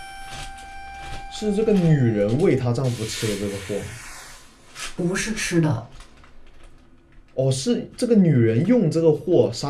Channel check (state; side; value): identical; both; correlation 1.00